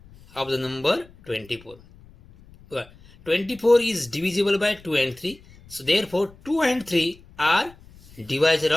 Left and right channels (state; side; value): noise; left; rumble, 24 dB below the sound